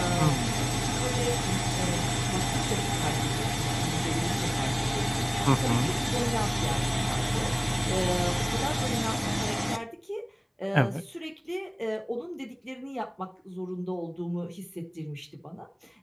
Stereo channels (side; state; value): both; identical; correlation 1.00